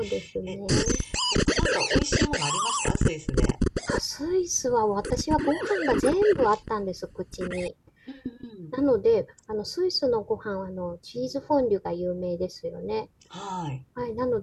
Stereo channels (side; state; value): both; identical; correlation 1.00